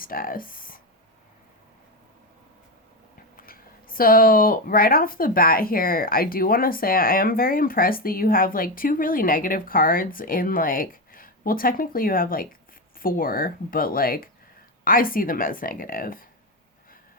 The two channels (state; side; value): normal; both; correlation 0.13